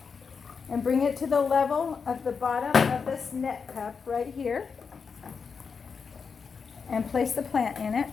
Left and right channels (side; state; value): right; quieter; 5.6 dB